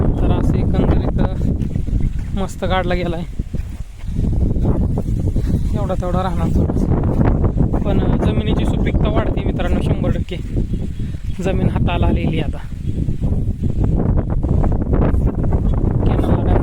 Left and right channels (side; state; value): both; identical; correlation 1.00